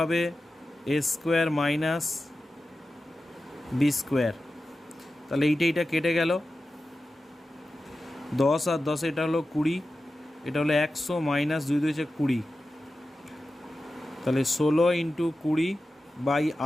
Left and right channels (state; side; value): normal; both; correlation 0.93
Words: a square minus b square. তাহলে এইটা কেটে গেল, 10 আর 10 এটা হলো 20, এটা হলো 100 মাইনাস 2 2 20। তাহলে 16 ইন্টু 20 বাই